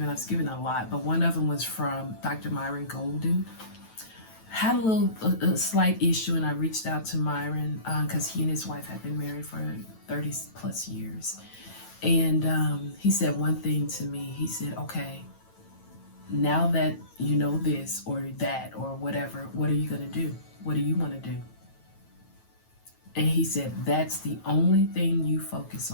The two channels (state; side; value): late; right; 9.1 ms